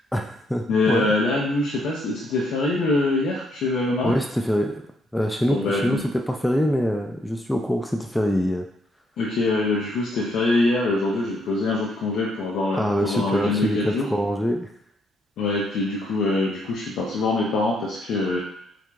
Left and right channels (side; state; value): both; normal; correlation 0.72